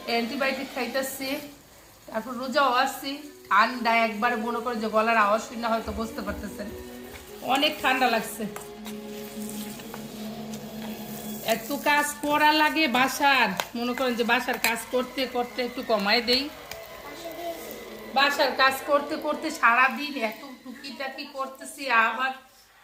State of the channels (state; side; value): identical; both; correlation 1.00